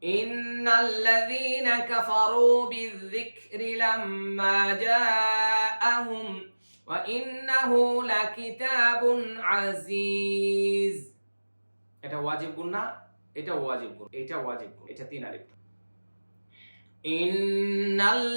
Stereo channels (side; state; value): both; inverted; correlation -1.00